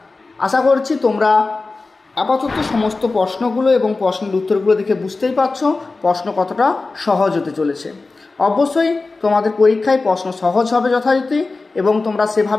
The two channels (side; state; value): right; quieter; 3.7 dB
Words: আশা করছি তোমরা আপাতত সমস্ত প্রশ্নগুলো এবং প্রশ্নের উত্তরগুলো দেখে বুঝতেই পারছো প্রশ্ন কতটা সহজ হতে চলেছে। অবশ্যই তোমাদের পরীক্ষায় প্রশ্ন সহজ হবে যথারীতি এবং তোমরা